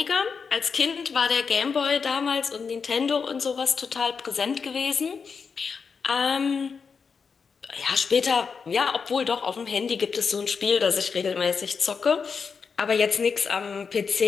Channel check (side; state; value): right; quieter; 5.6 dB